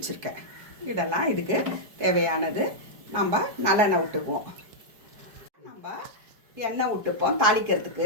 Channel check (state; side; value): late; left; 4.7 ms